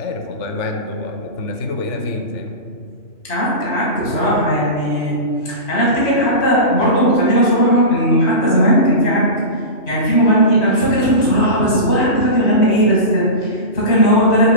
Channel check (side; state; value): right; late; 2.9 ms